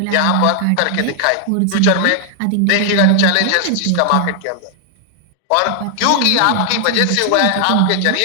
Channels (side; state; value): both; different; correlation 0.00